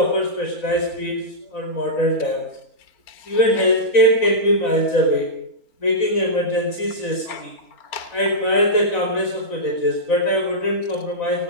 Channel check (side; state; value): right; late; 4.0 ms